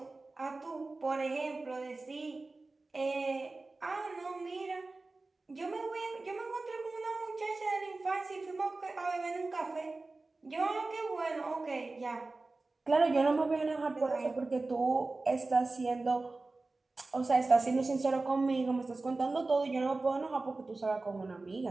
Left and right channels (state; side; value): quieter; left; 3.4 dB